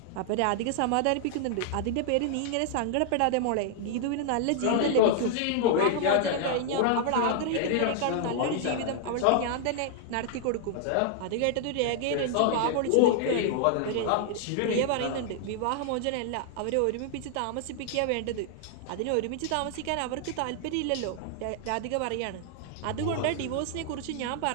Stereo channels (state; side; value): different; both; correlation 0.00